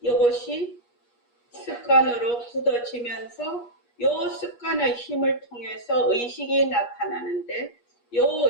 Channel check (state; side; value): late; right; 8.4 ms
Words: 이것이 습관으로 굳어지면서 요 습관의 힘을 통해서 의식이 나타나는데 요